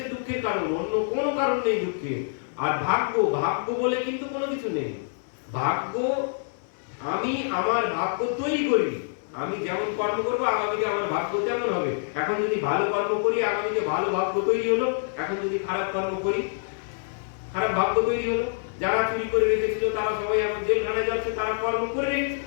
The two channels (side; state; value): right; silent; digital silence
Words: দুঃখের কারণ, অন্য কোনো কারণ নেই দুঃখের। আর ভাগ্য, ভাগ্য বলে কিন্তু কোনো কিছু নেই। ভাগ্য আমি আমার ভাগ্য তৈরি করি, আমি যেমন কর্ম করবো আগামীতে আমার ভাগ্য তেমন হবে। এখন যদি ভালো কর্ম করি আগামীতে ভালো ভাগ্য তৈরি হলো, এখন যদি খারাপ কর্ম করি খারাপ ভাগ্য তৈরি হলো। যারা চুরি করে রেখেছিল তারা সবাই এখন জেলখানায় যাচ্ছে, তারা কর্ম করে রেখেছে